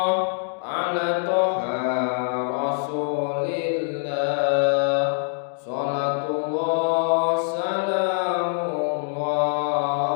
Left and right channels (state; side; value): silent; right; digital silence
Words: ala toha rasulillah. Salatullah salamullah